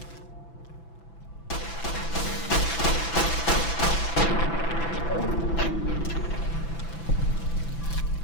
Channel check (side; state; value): right; late; 6.0 ms